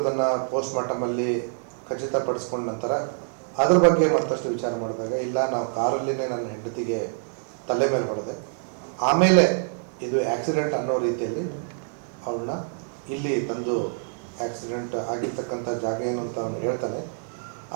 ಪೋಸ್ಟ್ ಮಾರ್ಟಮಲ್ಲಿ ಖಚಿತಪಡಿಸ್ಕೊಂಡ ನಂತರ ಅದ್ರ ಬಗ್ಗೆ ಮತ್ತಷ್ಟು ವಿಚಾರ ಮಾಡಿದಾಗ ಇಲ್ಲ, ನಾವು ಕಾರಲ್ಲಿನೇ ನನ್ನ ಹೆಂಡತಿಗೆ ತಲೆ ಮೇಲೆ ಹೊಡೆದೆ, ಆಮೇಲೆ ಇದು ಆಕ್ಸಿಡೆಂಟ್ ಅನ್ನೋ ರೀತಿಯಲ್ಲಿ ಅವಳನ್ನ ಇಲ್ಲಿ ತಂದು ಆಕ್ಸಿಡೆಂಟ್ ಆಗಿರ್ತಕ್ಕಂಥ ಜಾಗ ಏನು ಅಂತ ಅವನು ಹೇಳ್ತಾನೆ,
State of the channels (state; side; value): silent; left; digital silence